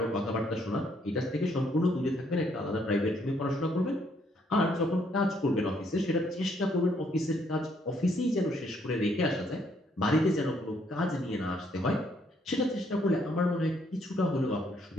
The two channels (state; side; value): normal; both; correlation 0.69